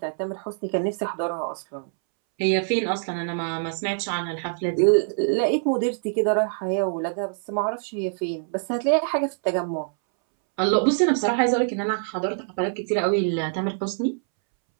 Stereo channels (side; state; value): left; silent; 62 dB below the other